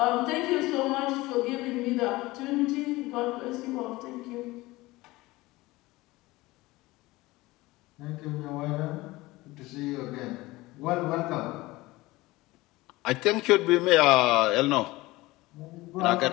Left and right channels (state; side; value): quieter; right; 20.0 dB